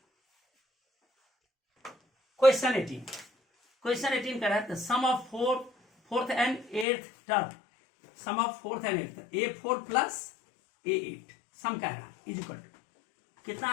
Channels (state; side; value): drops out; right; at 6.9 s